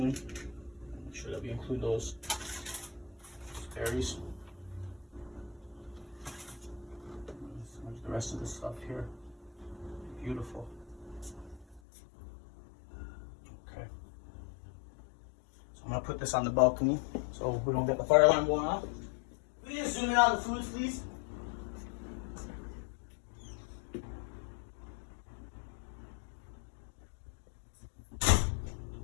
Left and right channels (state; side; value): drops out; right; at 11.8 s